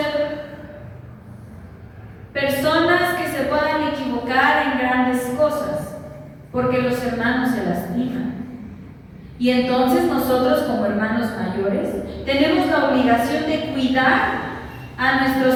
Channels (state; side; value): identical; both; correlation 1.00